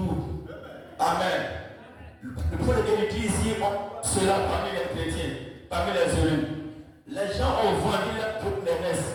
Amen. Le point de il dit ici, cela parmi les chrétiens, parmi les élus. Les gens ont vendu toutes les messes.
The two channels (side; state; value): both; identical; correlation 1.00